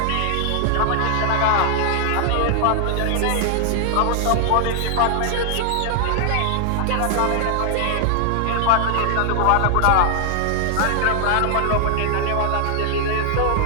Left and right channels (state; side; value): different; both; correlation 0.00